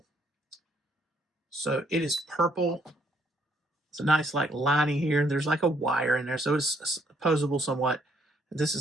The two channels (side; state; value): both; normal; correlation 0.69